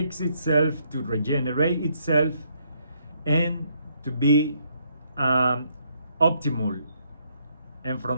itself, to regenerate itself, and to be optimal. And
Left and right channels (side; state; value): both; inverted; correlation -0.71